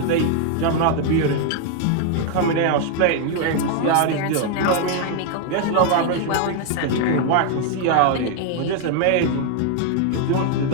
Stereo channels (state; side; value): different; both; correlation 0.00